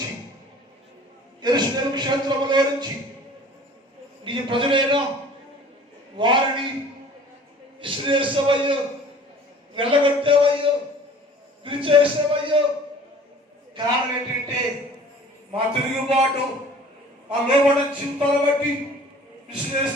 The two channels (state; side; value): normal; both; correlation 0.48